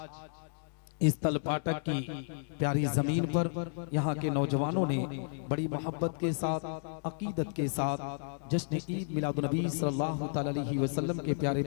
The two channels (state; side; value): silent; right; digital silence